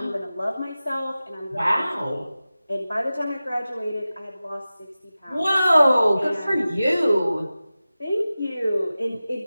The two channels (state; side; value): inverted; both; correlation -0.95